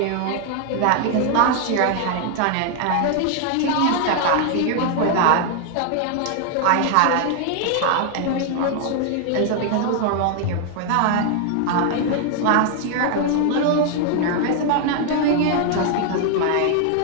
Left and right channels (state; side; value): different; both; correlation 0.00